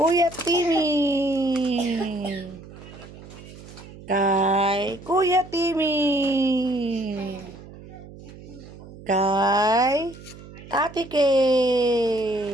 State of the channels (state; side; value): noise; right; hum, 17 dB below the sound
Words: Timmy. Kay Kuya Timmy. Kay Ate